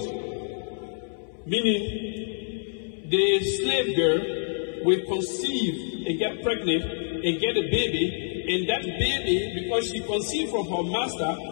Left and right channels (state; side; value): silent; right; 60 dB below the other